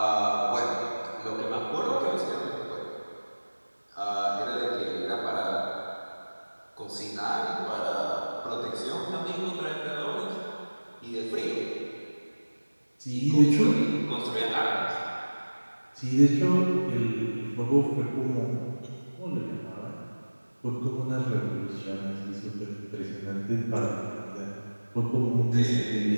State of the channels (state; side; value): inverted; both; correlation -1.00